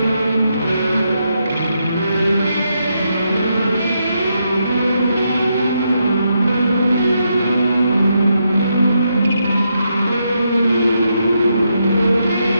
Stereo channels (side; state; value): both; inverted; correlation -0.81